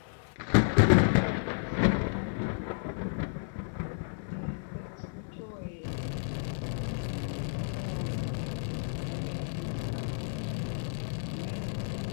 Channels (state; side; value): silent; right; digital silence